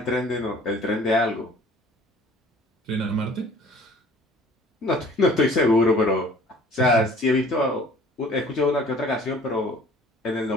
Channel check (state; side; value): normal; both; correlation 0.52